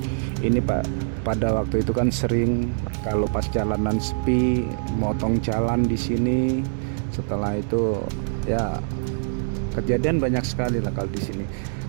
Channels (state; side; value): silent; left; 62 dB below the other